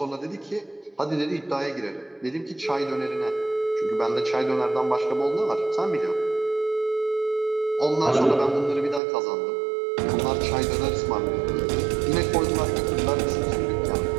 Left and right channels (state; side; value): drops out; left; at 9.0 s